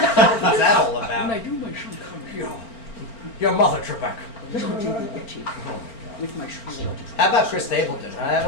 that all about? When I do my Sean Connery, Your mother, Trebek. with my Sean. How about Chris Stapleton, huh,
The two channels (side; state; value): right; late; 4.4 ms